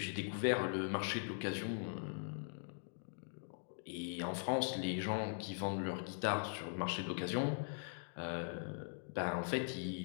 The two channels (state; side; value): silent; right; digital silence